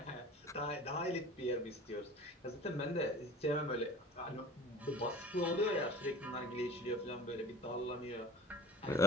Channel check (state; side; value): normal; both; correlation 0.42